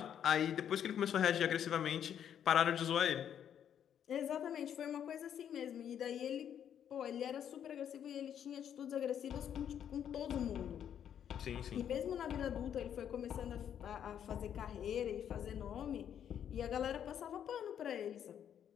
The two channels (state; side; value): quieter; right; 9.3 dB